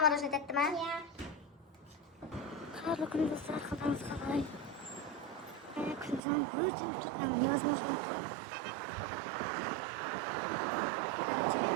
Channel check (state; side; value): drops out; left; at 6.2 s